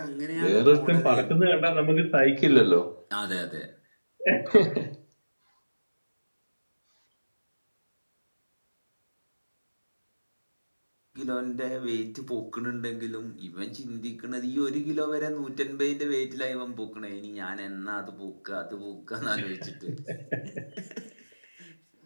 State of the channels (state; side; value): inverted; both; correlation -1.00